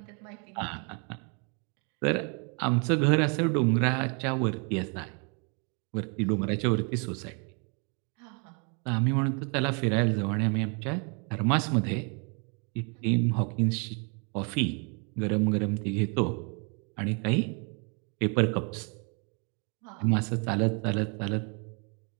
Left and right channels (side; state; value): left; quieter; 36.6 dB